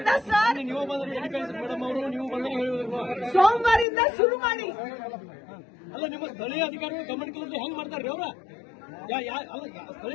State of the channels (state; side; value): drops out; right; at 3.9 s